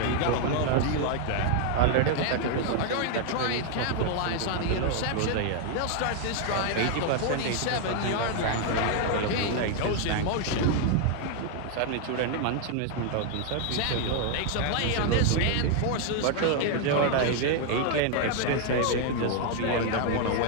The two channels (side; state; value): both; different; correlation 0.00